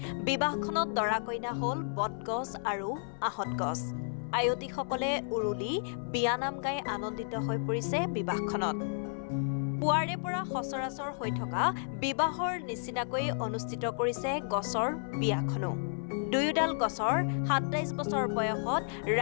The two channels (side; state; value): right; silent; 56 dB below the other